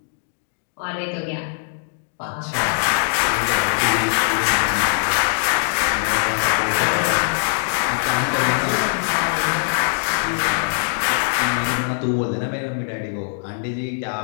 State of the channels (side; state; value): right; silent; digital silence